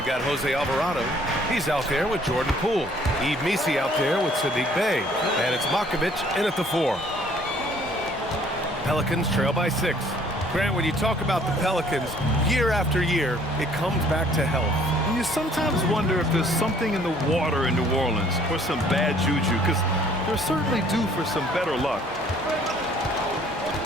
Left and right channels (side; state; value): both; normal; correlation 0.59